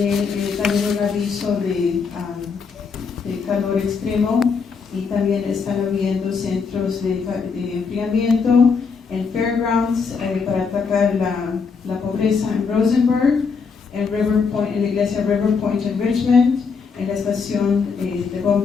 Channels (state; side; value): quieter; right; 5.4 dB